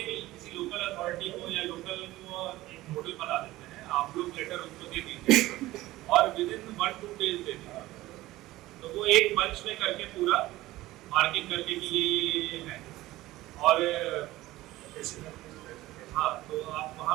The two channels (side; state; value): left; quieter; 17.2 dB